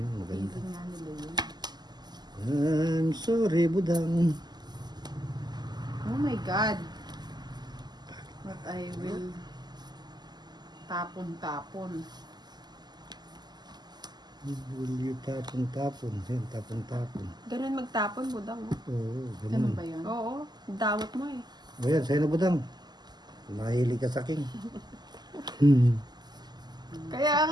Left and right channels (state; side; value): late; left; 0.20 ms